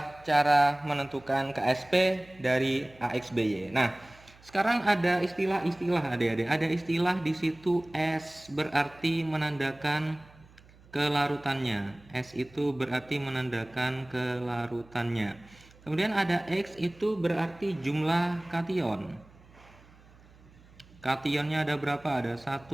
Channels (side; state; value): right; noise; hum, 25 dB below the sound